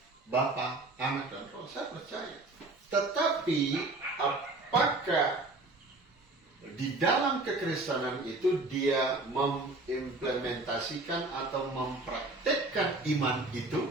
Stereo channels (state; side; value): quieter; left; 3.0 dB